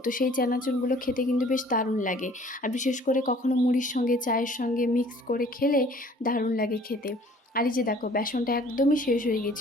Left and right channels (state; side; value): normal; both; correlation 0.53